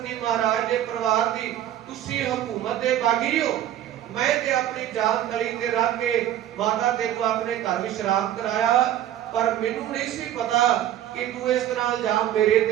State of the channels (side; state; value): left; quieter; 11.9 dB